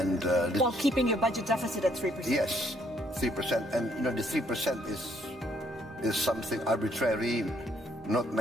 while keeping your budget deficit at 3%. Yes, 3%. And the 3% is something arbitrary. Not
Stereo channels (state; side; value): normal; both; correlation 0.68